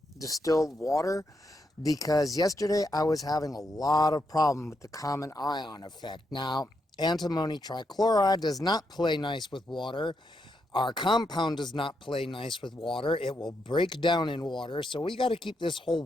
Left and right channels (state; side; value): normal; both; correlation 0.81